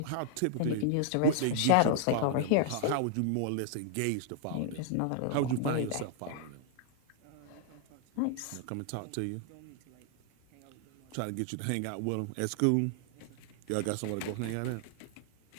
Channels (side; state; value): both; different; correlation 0.00